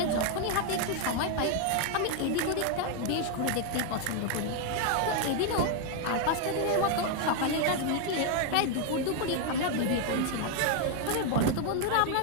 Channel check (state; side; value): different; both; correlation 0.01